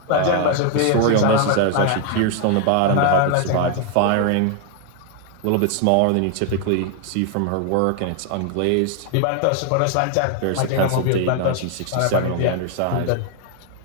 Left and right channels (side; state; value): both; different; correlation 0.00